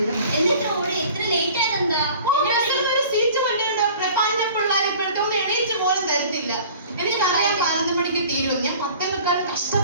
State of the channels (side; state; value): both; inverted; correlation -0.46